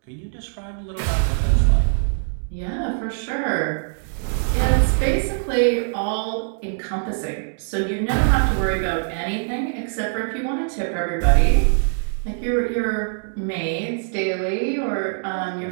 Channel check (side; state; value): left; silent; digital silence